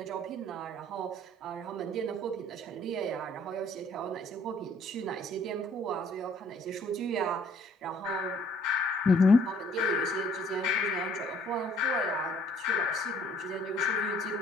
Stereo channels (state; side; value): normal; both; correlation 0.61